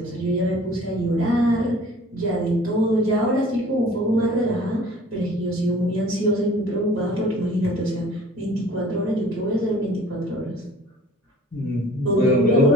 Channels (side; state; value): both; normal; correlation 0.49